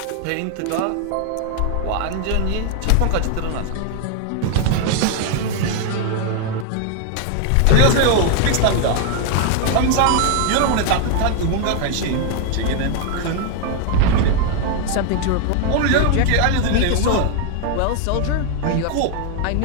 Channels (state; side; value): different; both; correlation 0.00